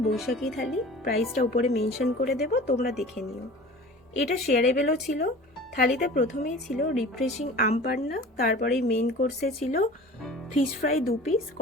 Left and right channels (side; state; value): both; normal; correlation 0.41